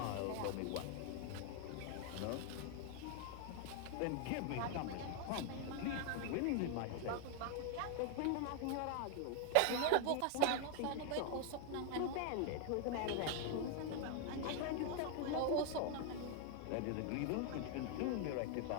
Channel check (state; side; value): different; both; correlation 0.00